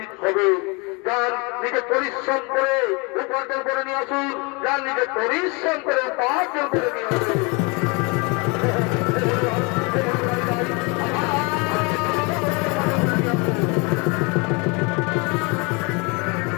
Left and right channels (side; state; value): right; quieter; 29.2 dB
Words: দিতে হবে। যার নিজে পরিশ্রম করে উপার্জন করে নিয়ে আসুন, যার নিজে পরিশ্রম করে উপার্জন করে নিয়ে আসুন।